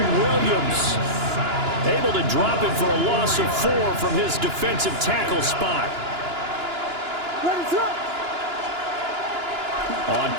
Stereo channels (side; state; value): left; late; 2.9 ms